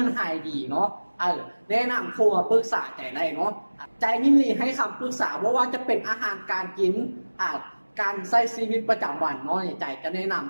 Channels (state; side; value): inverted; both; correlation -1.00